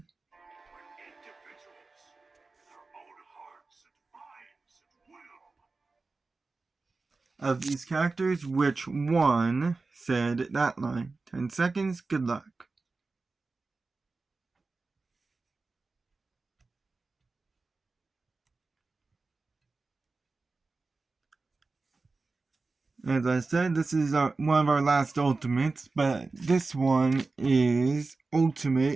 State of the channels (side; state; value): left; quieter; 3.8 dB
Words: with their own hearts and minds and will. of these characters, which one said that line? 10 seconds, good luck. As I said, this is one of our last ultimates, but this one is